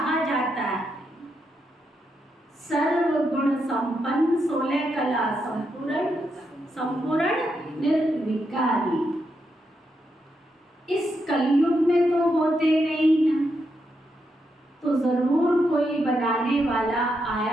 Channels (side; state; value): both; normal; correlation 0.82